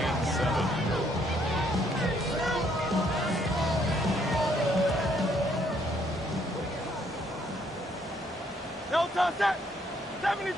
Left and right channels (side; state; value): both; normal; correlation 0.68